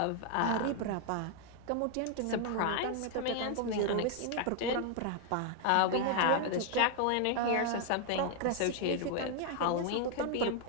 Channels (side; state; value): both; different; correlation 0.00